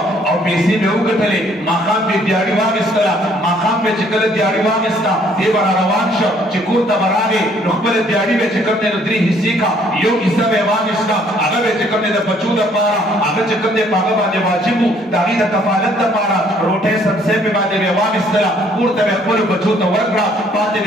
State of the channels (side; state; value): both; normal; correlation 0.63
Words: او پیسې مې وګټلې ماښام مې دیاړي واخیستله ماښام مې چې کله دیاړي واخیسته دې به را روان شه چې کور ته به راغې نو خپله دیاړي به چې کوم دی نو 3 حصې کړه یو حصه به یې واخیسته هغه به چې کوم دی د بچو دپاره هغه چې کوم دی په هغه باندې واجب و د هغې د کفالت دپاره روټۍ سبزۍ مې باندې به یې واخیستله کور ته به یې خپلو بچو ته ورکړه پاتې